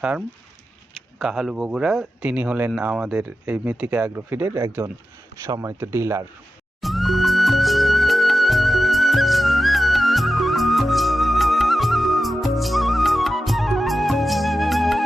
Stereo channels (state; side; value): normal; both; correlation 0.92